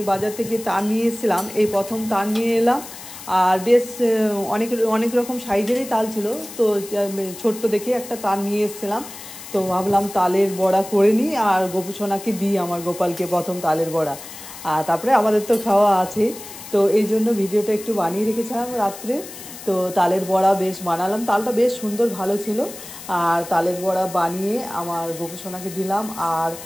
বাজার থেকে তার নিয়ে এসেছিলাম, এই প্রথম তার নিয়ে এলাম। আর বেশ অনেক অনেক রকম সাইজেরই তাল ছিল। তো ছোট্ট দেখে একটা তার নিয়ে এসেছিলাম। তো ভাবলাম তালের বড়া করে নিই আর গোপুসোনাকে দিই, আমার গোপালকে প্রথম তালের বড়া। আর তারপরে আমাদের তো খাওয়া আছে। তো এই জন্য ভিডিওটা একটু বানিয়ে রেখেছিলাম রাত্রে। তো তালের বড়া বেশ বানালাম, তালটা বেশ সুন্দর ভালো ছিল। আর তালের বড়া বানিয়ে আমার গোপুসোনাকে দিলাম, আর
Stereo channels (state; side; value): noise; left; hiss, 14 dB below the sound